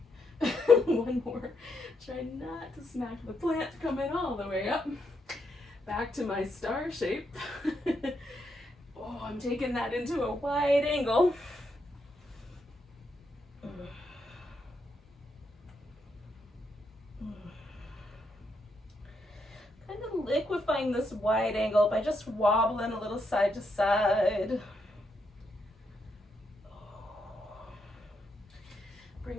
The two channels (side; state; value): both; normal; correlation 0.79